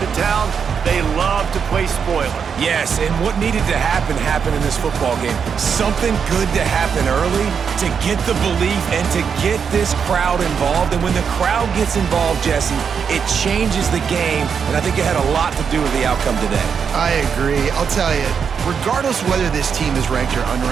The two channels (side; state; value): left; quieter; 6.7 dB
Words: town, they love to play spoiler. Yes, and what needed to happen happened in this football game. Something good to happen early to get the belief and to get this crowd involved. And when the crowd gets involved, Jesse, it changes the game, and I think it had a lot to do with the outcome today. I agree. I'll tell you, regardless whether this team is ranked or